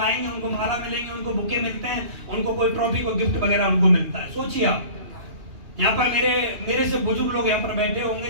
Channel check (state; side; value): late; left; 2.9 ms